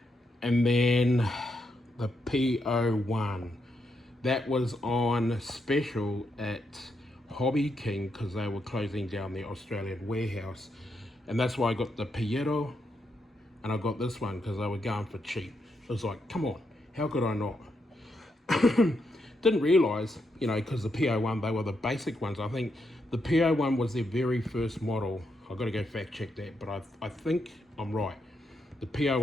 And then the PO1. That was on special at Hobby King because they were closing down their Australian warehouse. And that's why I got the Piero, and I got this one because they were going for cheap. It was like, come on, how could I not? Didn't realise, because the PO1, they were the basic ones. I think the PO1 was their very first model. I've got to go fact check that, but I think I'm right. The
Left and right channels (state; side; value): normal; both; correlation 0.81